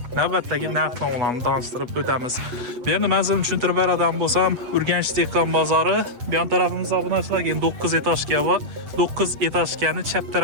navbatdagi narx-navolarni tanishtirib o'tamiz. Bu yerni manzilni tushuntirib beradigan bo'lsam, Urganch dehqon bozori bu yon tarafimizda obunachilar 9 etajga va 9 etajgani chap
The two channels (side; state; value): left; late; 8.3 ms